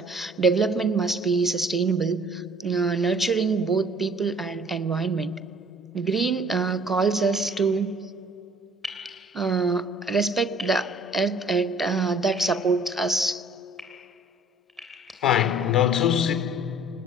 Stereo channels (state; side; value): normal; both; correlation 0.54